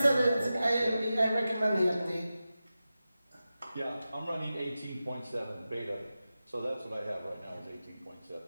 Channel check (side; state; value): both; inverted; correlation -0.93